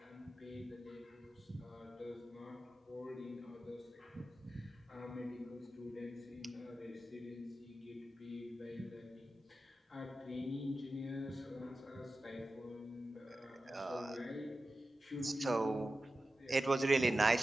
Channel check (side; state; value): both; normal; correlation 0.94